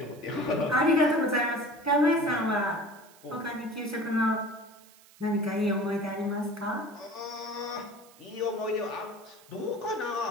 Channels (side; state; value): right; noise; hiss, 25 dB below the sound